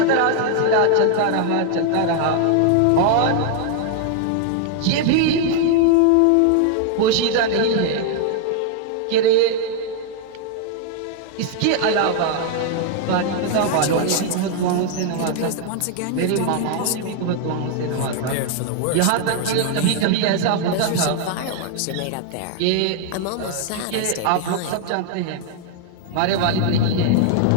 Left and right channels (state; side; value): different; both; correlation 0.00